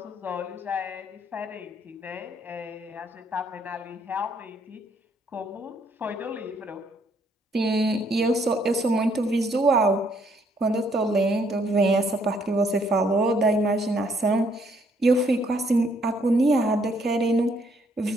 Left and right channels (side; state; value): both; normal; correlation 0.69